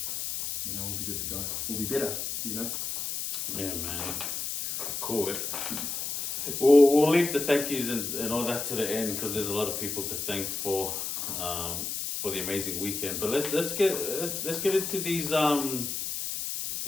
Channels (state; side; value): noise; left; hiss, 3 dB below the sound